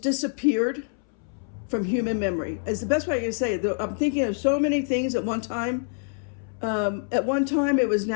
disappeared from human memory. It's the best way I can say it. I'm thinking of so many things at one time. At one time, it was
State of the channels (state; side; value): silent; right; 61 dB below the other